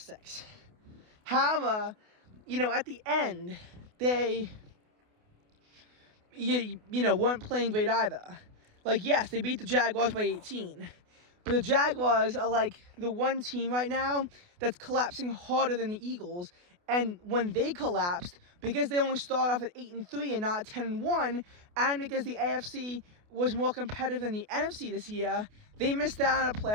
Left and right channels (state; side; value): late; left; 28 ms